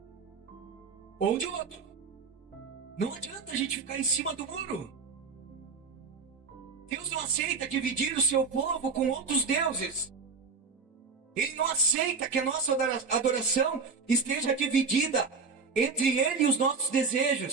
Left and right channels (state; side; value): quieter; left; 4.9 dB